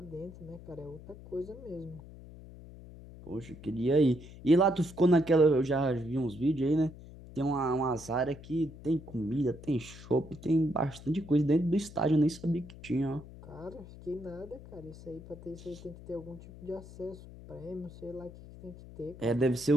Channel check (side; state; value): left; noise; hum, 17 dB below the sound